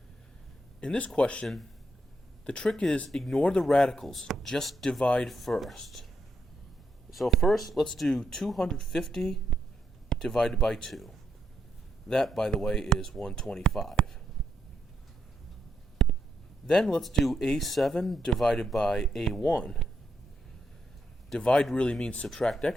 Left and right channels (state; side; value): normal; both; correlation 0.79